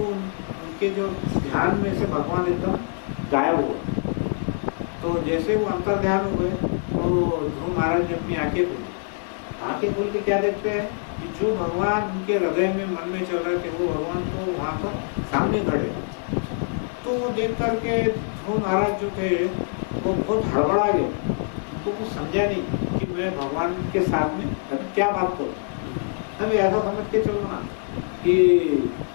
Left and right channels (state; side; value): silent; right; 62 dB below the other